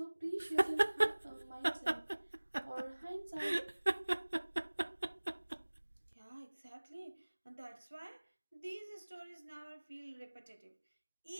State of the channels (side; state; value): both; inverted; correlation -1.00